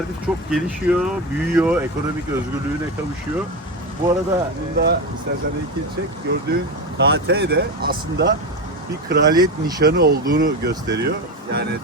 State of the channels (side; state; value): both; normal; correlation 0.18